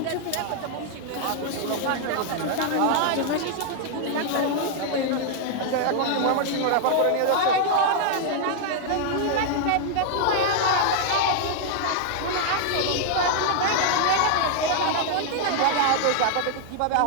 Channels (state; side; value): different; both; correlation 0.00